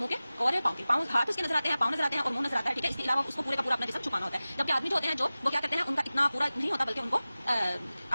کے اور پاؤں کے. پاؤں ہاتھ اس کے نظر آتے ہیں، پاؤں نظر آتے ہیں اور منہ نظر آتا ہے، ٹھیک ہے. اس کے علاوہ اس کو پورے کا پورا اپنا جسم چھپانا ہوتا ہے. جبکہ آدمی جو ہوتے ہیں جو وہ کیا کرتے ہیں، ان کا اتنا پورا نہیں ہوتا بلکہ ان کو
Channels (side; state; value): both; inverted; correlation -0.97